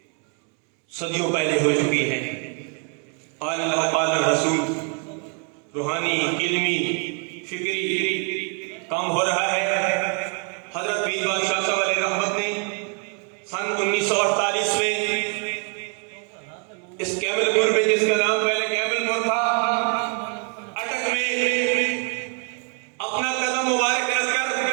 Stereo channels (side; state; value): left; quieter; 39.8 dB